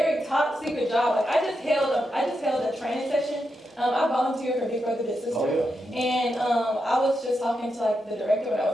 top secret job. Like I just held a training session. I volunteered for Big Brother Big Sister. Oh, yeah. And I was just talking to like the director when I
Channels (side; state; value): both; normal; correlation 0.86